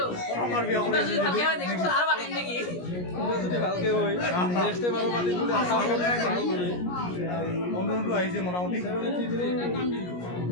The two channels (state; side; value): late; right; 17 ms